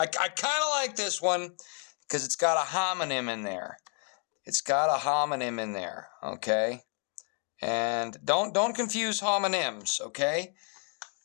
kind of like this one because it's got a homonym in there. It's got a homonym in there, okay? And don't confuse homonyms, okay?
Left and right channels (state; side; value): quieter; right; 39.0 dB